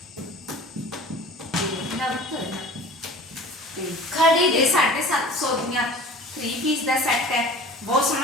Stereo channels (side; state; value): both; normal; correlation 0.42